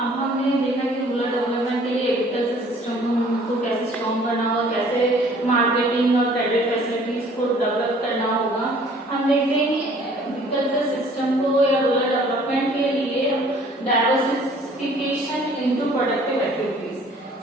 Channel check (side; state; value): both; normal; correlation 0.55